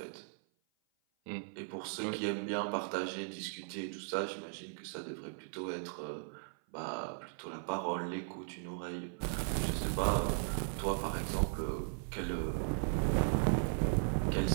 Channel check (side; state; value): left; silent; 53 dB below the other